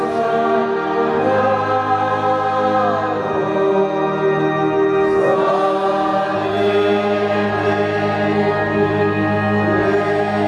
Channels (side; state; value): both; identical; correlation 1.00